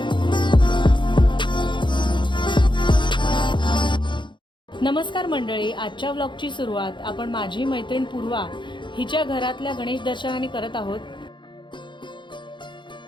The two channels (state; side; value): late; right; 0.23 ms